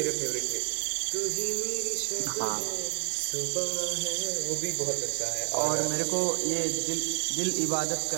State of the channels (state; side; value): silent; left; digital silence